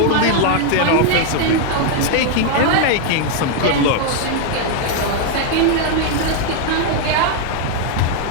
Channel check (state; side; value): different; both; correlation 0.00